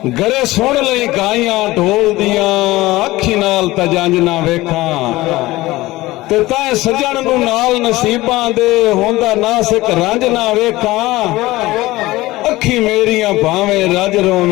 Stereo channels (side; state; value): right; quieter; 18.7 dB